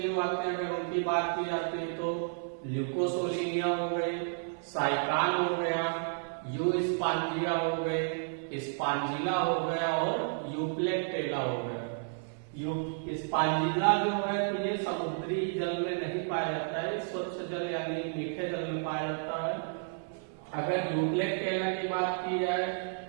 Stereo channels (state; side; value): silent; left; 57 dB below the other